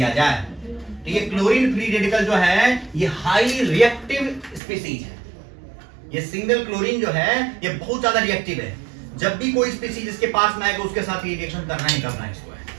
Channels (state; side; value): drops out; left; at 4.6 s